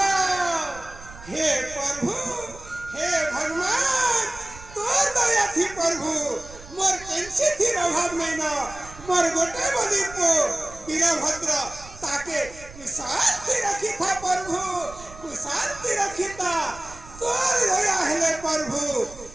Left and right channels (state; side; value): noise; right; rumble, 18 dB below the sound